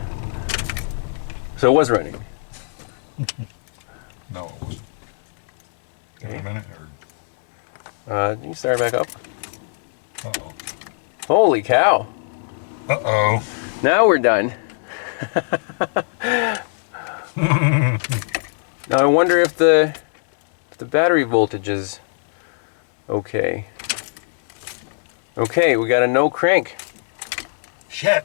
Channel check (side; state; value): right; silent; digital silence